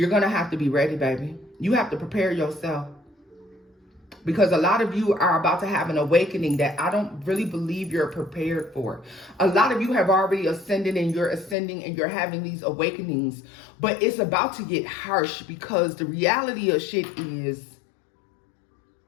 going to have to be ready, baby. You have to prepare yourself. Because a lot of you are about to have an awakening that I don't really believe you're prepared for. A lot of you have already ascended and you're ascending and you're having these awakenings. But it's about to get harsh because the reality of shit is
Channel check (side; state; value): right; drops out; at 11.6 s